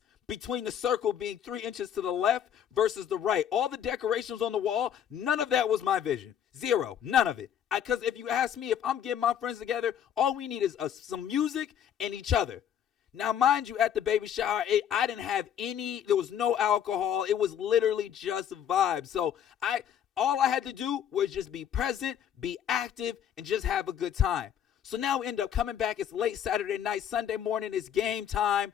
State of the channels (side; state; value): right; quieter; 9.3 dB